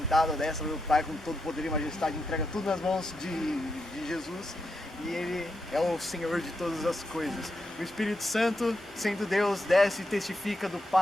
à destra do Pai com todo poder e majestade, entrega tudo nas mãos de Jesus e ele é o Senhor de todas as coisas. O Espírito Santo, sendo Deus, desce e testifica do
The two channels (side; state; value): both; normal; correlation 0.84